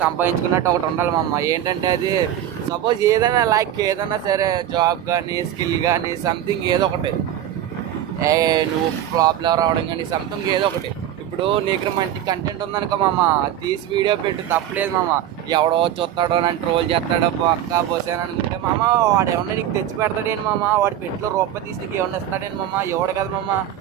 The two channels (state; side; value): quieter; left; 11.3 dB